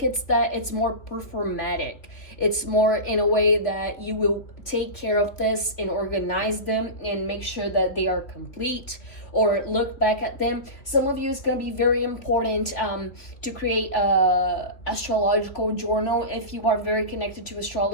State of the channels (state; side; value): late; right; 3.1 ms